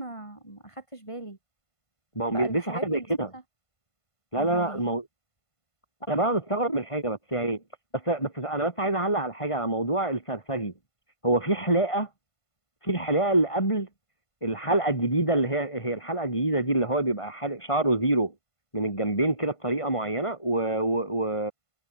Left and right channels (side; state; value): right; late; 1.5 ms